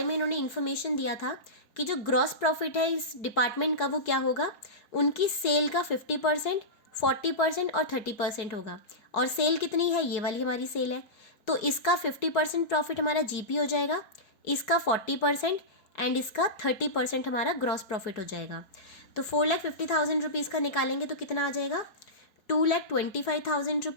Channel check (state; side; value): late; right; 4.4 ms